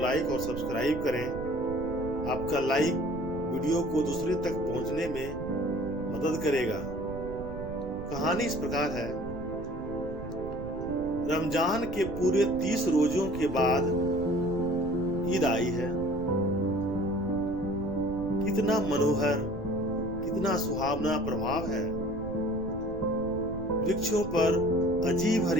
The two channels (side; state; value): right; noise; rumble, 10 dB below the sound